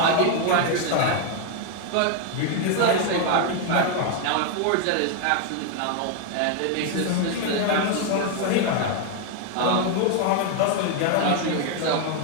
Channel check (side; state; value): both; different; correlation 0.00